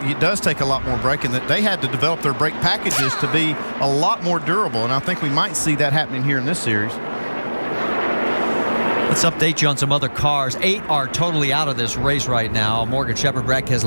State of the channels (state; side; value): inverted; both; correlation -1.00